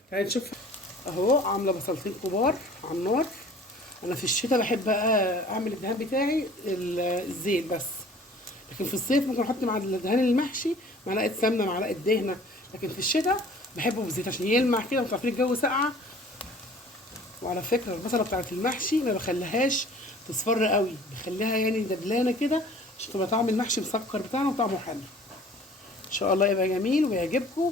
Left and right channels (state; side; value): normal; both; correlation 0.49